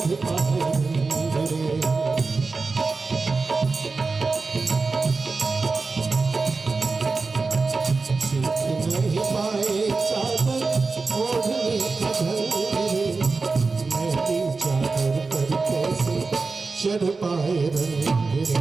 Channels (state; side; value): quieter; left; 4.1 dB